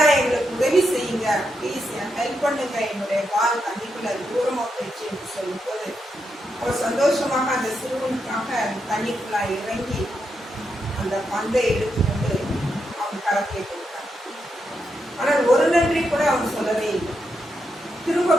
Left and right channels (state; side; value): normal; both; correlation 0.83